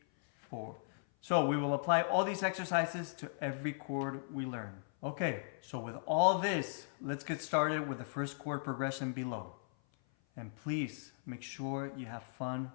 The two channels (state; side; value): silent; right; 53 dB below the other